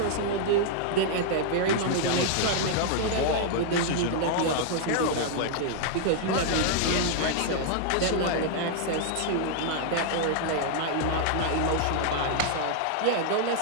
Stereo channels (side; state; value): both; different; correlation -0.01